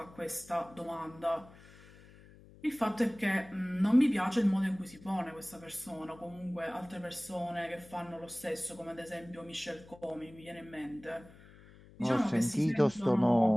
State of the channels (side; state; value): left; noise; hum, 22 dB below the sound